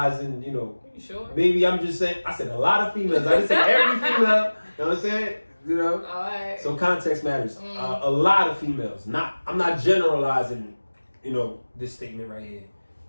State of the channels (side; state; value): both; inverted; correlation -1.00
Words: You know, You sure? maybe I'm just saying. I said a lot of females. I didn't say every female. You know what I'm saying? You know. All right. So context matters. A lot of females. I'm not generalizing. You know, this statement right here.